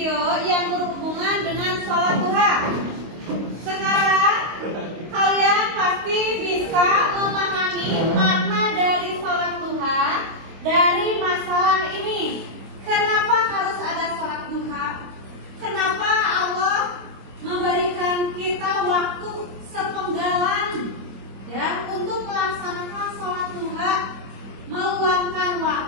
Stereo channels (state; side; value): late; left; 25 ms